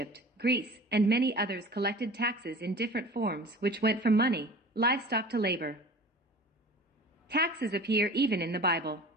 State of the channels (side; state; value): both; normal; correlation 0.40